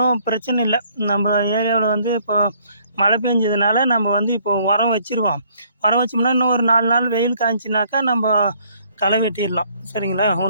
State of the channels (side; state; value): both; inverted; correlation -0.63